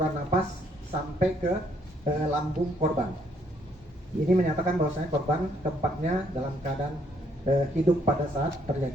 napas sampai ke lambung korban. Ini menyatakan bahwasanya korban keempatnya dalam keadaan hidup pada saat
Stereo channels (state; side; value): normal; both; correlation 0.69